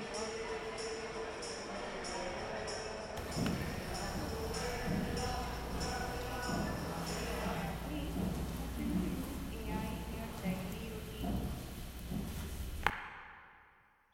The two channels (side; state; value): both; identical; correlation 1.00